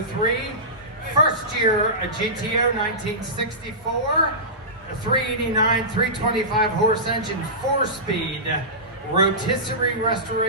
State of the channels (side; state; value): both; normal; correlation -0.18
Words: first year a GTO 1964, a 389, 325 horse engine, 4-speed, rotisserie